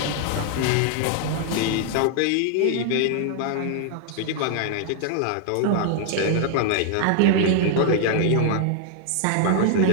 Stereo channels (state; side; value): different; both; correlation 0.00